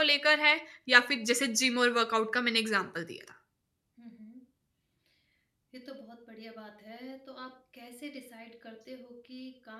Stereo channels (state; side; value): identical; both; correlation 1.00